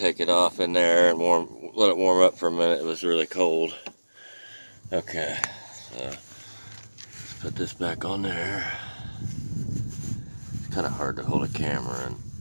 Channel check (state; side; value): inverted; both; correlation -1.00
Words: it off in there and let it warm up for a minute. It was really cold. Okay, so let's put this back on there. It's kind of hard to hold a camera and